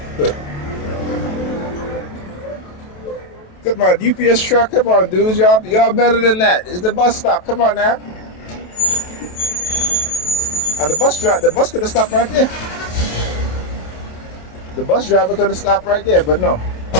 Come on, UPS truck. Come on, dudes. Y'all better than that. It's the bus stop. Come on now. And the bus could have stopped right there. The bus driver could have stopped right there, but no.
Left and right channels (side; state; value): right; late; 27 ms